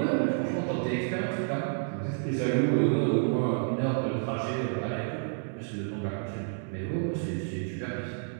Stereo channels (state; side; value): silent; left; 58 dB below the other